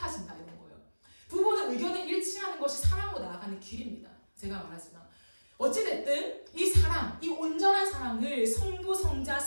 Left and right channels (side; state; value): both; inverted; correlation -1.00